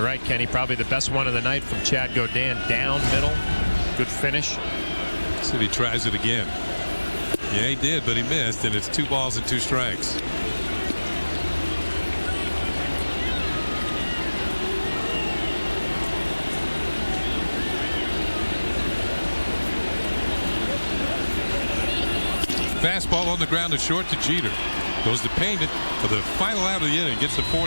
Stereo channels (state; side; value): inverted; both; correlation -1.00